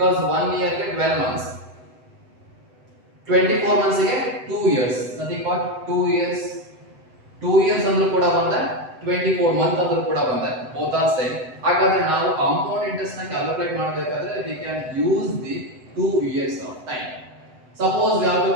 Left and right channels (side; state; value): left; late; 7.9 ms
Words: 1 year ಗೆ 12 months. 24 months ಗೆ 2 years. Nothing but 2 years. 2 years ಅಂದ್ರೂ ಕೂಡ ಬಂದೆ 24 ಮಂತ್ ಅಂದ್ರೂ ಕೂಡ ಬಂದೆ both are same. ಹಾಗಾದ್ರೆ ನಾವು ಕಾಂಪೌಂಡ್ ಇಂಟ್ರೆಸ್ಟ್ ನ ಕ್ಯಾಲ್ಕುಲೇಟ್ ಮಾಡಬೇಕಾದ್ರೆ we can use the 2 years of time. Suppose we have to